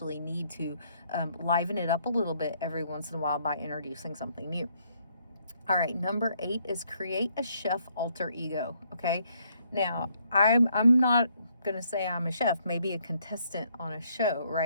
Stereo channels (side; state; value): both; inverted; correlation -0.70